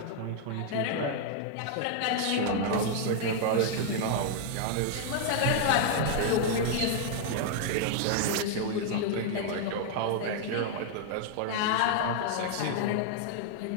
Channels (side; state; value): both; different; correlation 0.00